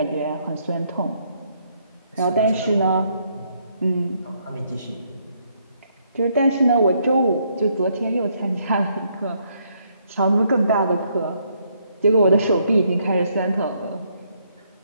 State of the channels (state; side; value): inverted; both; correlation -0.72